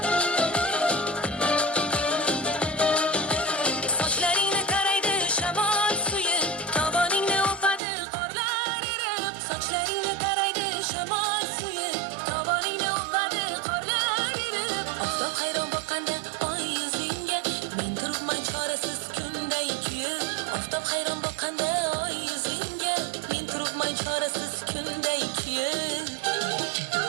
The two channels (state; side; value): drops out; left; at 7.8 s